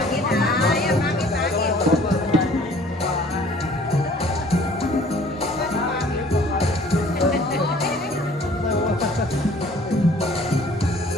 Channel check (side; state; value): both; normal; correlation 0.54